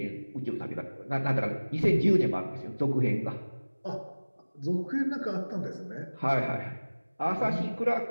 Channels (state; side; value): inverted; both; correlation -1.00